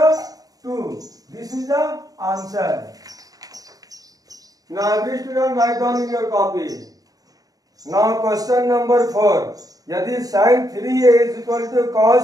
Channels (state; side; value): late; left; 0.18 ms